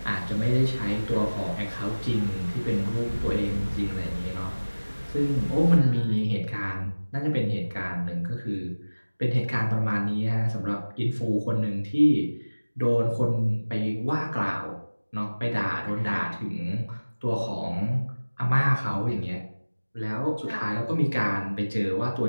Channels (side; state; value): both; inverted; correlation -1.00